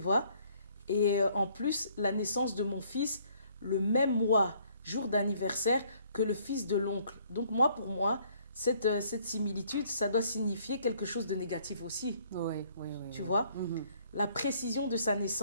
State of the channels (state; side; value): inverted; both; correlation -0.63